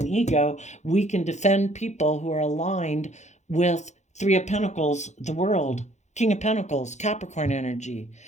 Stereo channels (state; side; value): late; right; 0.33 ms